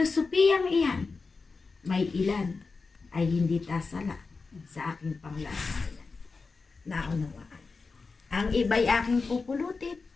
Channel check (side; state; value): right; quieter; 4.3 dB